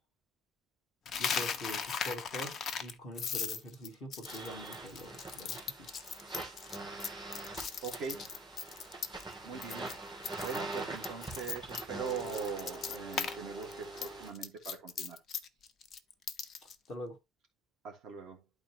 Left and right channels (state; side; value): normal; both; correlation 0.52